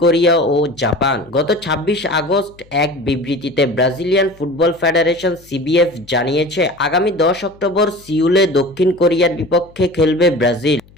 কোরিয়া ও জাপান। গত 26 আগস্ট এক বিবৃতিতে ব্রাজিলিয়ান ফুটবল ফেডারেশন সিবিএফ জানিয়েছে, আগামী 10 অক্টোবর সিউলে দক্ষিণ কোরিয়ার বিপক্ষে খেলবে ব্রাজিল।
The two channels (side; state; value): left; noise; hum, 27 dB below the sound